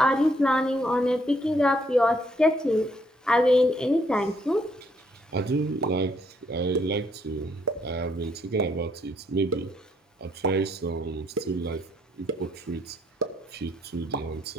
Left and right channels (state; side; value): normal; both; correlation 0.70